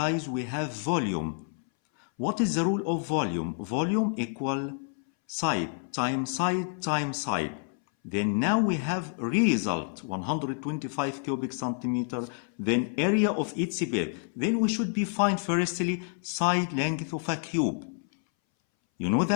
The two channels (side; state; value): right; silent; 59 dB below the other